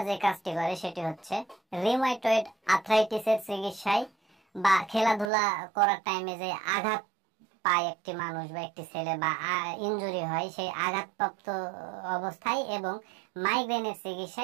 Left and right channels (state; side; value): drops out; left; at 5.3 s